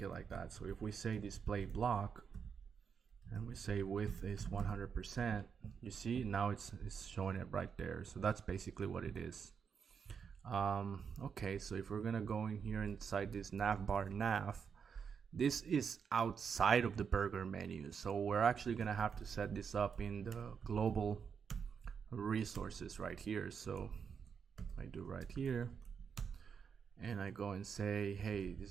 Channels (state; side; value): quieter; left; 6.6 dB